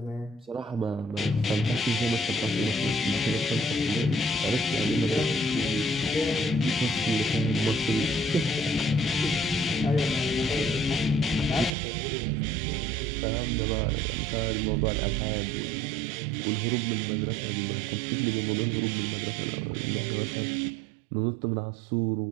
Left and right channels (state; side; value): drops out; left; at 11.8 s